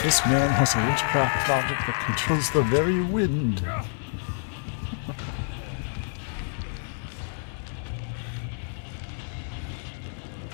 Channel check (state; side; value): silent; right; 60 dB below the other